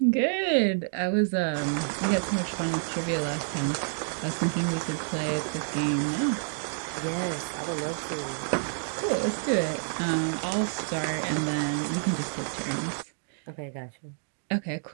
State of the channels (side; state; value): left; silent; digital silence